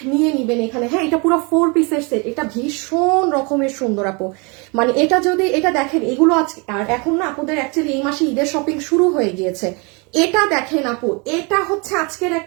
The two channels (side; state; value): left; quieter; 30.7 dB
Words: নিয়ে নিবেন এখানে। হ্যাঁ, এটা পুরো 4 পিসের সেট, এটা ভীষণ রকমের সুন্দর আপু। মানে এটা যদি এটা দেখেন, এগুলো আজকে আর এখন না আপুদের অ্যাকচুয়ালি এই মাসে ঈদের শপিং শুরু হয়ে গিয়েছে। এটা দেখেন আপু, এটা হচ্ছে আজকের